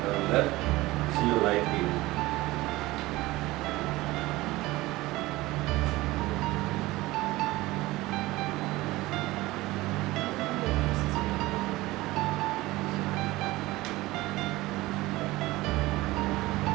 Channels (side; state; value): left; quieter; 19.2 dB